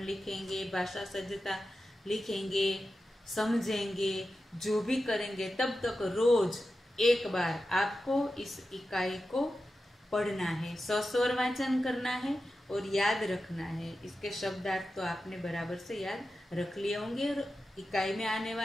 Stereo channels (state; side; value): normal; both; correlation 0.92